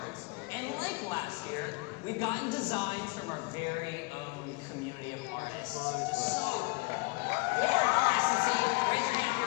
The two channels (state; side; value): quieter; right; 26.2 dB